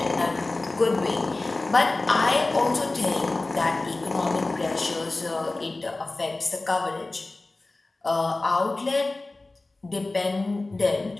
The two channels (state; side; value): quieter; right; 3.1 dB